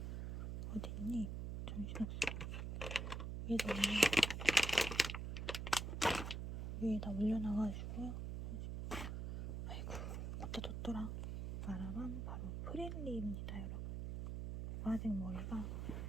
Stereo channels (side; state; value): right; noise; hum, 4 dB below the sound